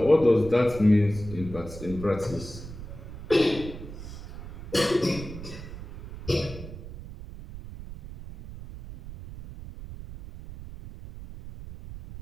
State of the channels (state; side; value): noise; right; rumble, 12 dB below the sound